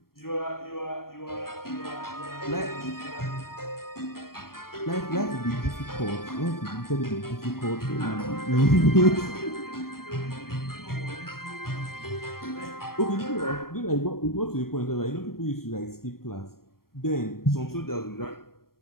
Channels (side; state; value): right; late; 0.93 ms